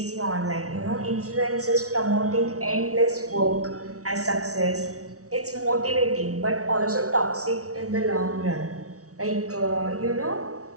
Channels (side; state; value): left; late; 0.66 ms